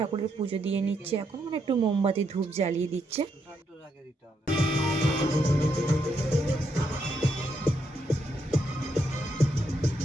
পুজো দিয়ে নিচ্ছে এখন, মানে একটু মোমবাতি ধূপ জ্বালিয়ে দিচ্ছে।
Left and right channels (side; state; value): both; normal; correlation 0.78